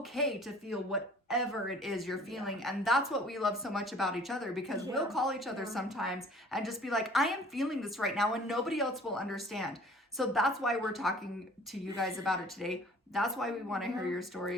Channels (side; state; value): both; normal; correlation 0.51